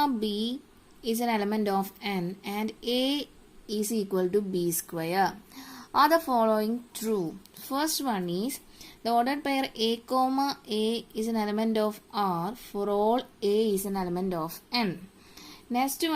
b is an element of n and a is equal to b square. Are the following true? First one is the ordered pair a comma a is an element of R for all a is an element of n. Next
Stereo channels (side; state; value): both; identical; correlation 1.00